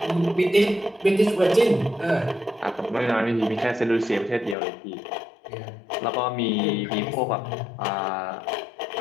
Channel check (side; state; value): right; drops out; at 4.5 s